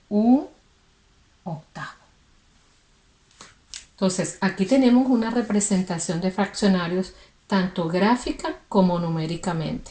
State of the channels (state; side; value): identical; both; correlation 1.00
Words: un octavo. Entonces, aquí tenemos una representación de fraccionarios tanto gráfica como numéricamente.